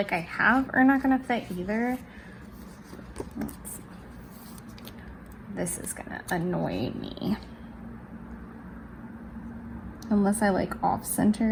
I have are not gonna fit either. This is gonna annoy me. Unless I like off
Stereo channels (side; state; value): both; identical; correlation 1.00